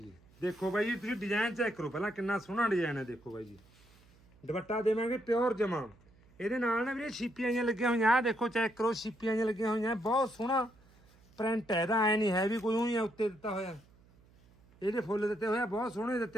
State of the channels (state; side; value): noise; right; hum, 28 dB below the sound